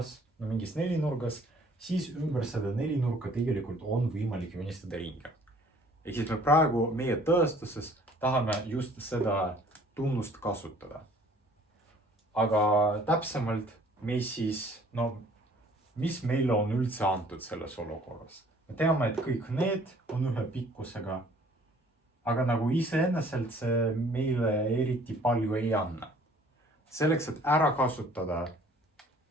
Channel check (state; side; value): normal; both; correlation 0.56